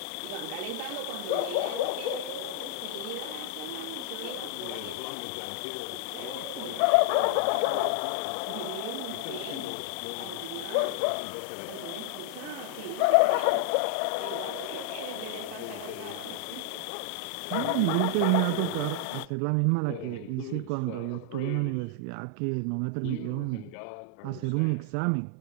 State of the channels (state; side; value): different; both; correlation 0.00